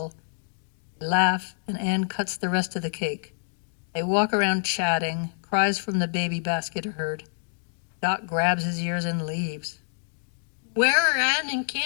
They laugh, and Anne cuts the rest of the cake. They walk around chatting, cries from the baby basket are heard. Doc grabs his ears and leaves. Where are Anne and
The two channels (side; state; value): right; silent; digital silence